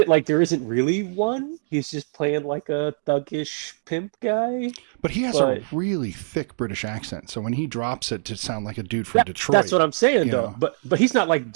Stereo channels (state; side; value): silent; left; digital silence